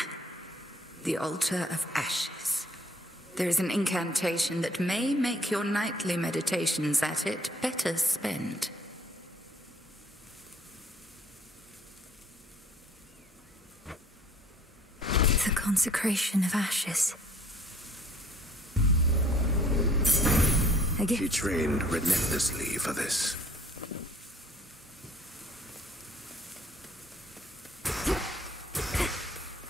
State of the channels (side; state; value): both; normal; correlation 0.57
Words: The altar of ashes. There is an incantation that may make your nightly meditations at it better spent. The consecration of ashes. She trained relentlessly for this.